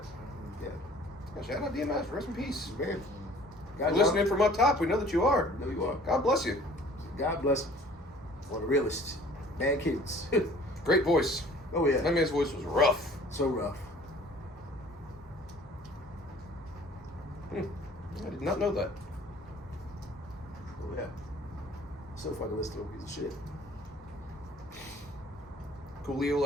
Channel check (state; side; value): normal; both; correlation 0.51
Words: Yeah. Yeah, shout out DMS. Rest in peace. Man, You're listening from up top. We know that you are. No, you are. God bless you. God bless him. One of the realest. Bad kids. Great voice. Oh, yeah. That man's voice was rough. So rough. I did not know that. Oh, yeah. So fucking listen to a piece of shit. Coolio